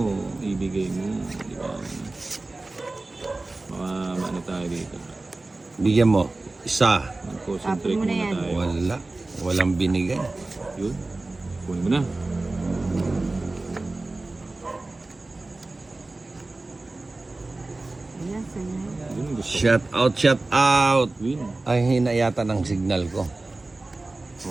Ibigay mo. Di ba? Baka ano tayo dito. Bigyan mo. Isa. Mag-concentrate Tapon mo na muna yan. tayo. Wala. Walang binigay. Yun. Kunin mo na. Ayan, sa'yo. Yun ang gusto ko. Shout out, shout out. Queen. Ay, hina yata ng signal ko.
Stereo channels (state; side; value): quieter; left; 3.1 dB